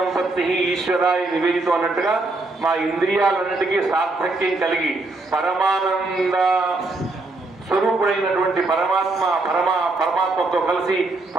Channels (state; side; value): quieter; left; 3.2 dB